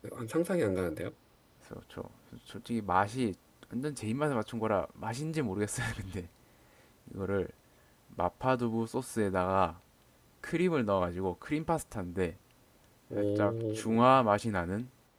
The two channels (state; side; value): identical; both; correlation 1.00